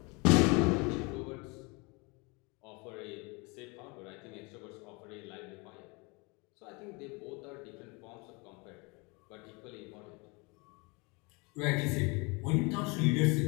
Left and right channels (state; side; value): quieter; right; 28.4 dB